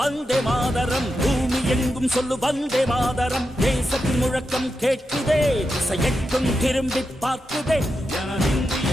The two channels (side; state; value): both; normal; correlation 0.88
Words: வந்தே மாதரம், பூமி எங்கும் சொல்லு வந்தே மாதரம். தேசத்தின் முழக்கம் கேட்குதே, திசை எட்டும் திரும்பி பார்க்குதே.